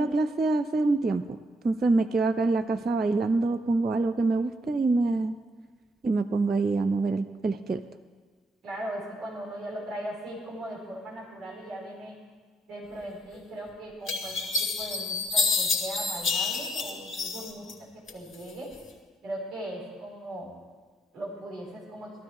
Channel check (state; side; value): normal; both; correlation 0.77